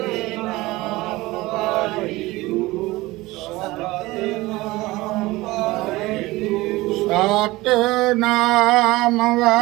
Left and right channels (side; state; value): left; quieter; 19.9 dB